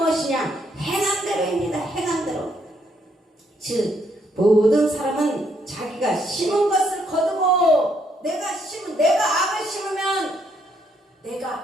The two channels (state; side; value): normal; both; correlation 0.72